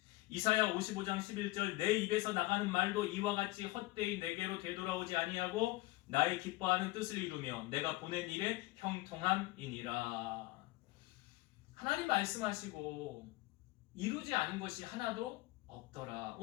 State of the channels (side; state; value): right; quieter; 20.3 dB